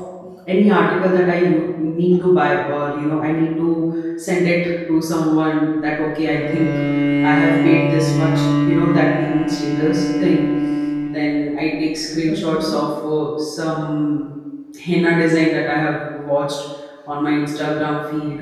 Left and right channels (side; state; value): both; identical; correlation 1.00